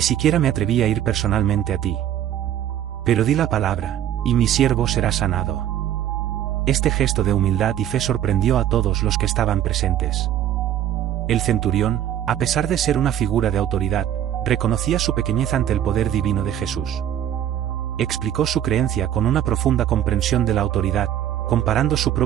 siquiera me atreví a ir personalmente a ti. Pero di la palabra, y mi siervo será sanado. Este gesto de humildad y fe sorprendió a todos los que estaban presentes. El centurión, a pesar de ser una figura de autoridad, reconocía su pequeñez ante el poder divino de Jesús. explicó su creencia con una profunda comprensión de la autoridad, comparando su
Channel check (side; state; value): left; quieter; 11.1 dB